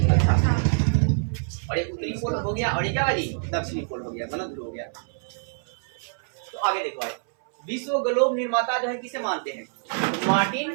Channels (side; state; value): left; silent; 61 dB below the other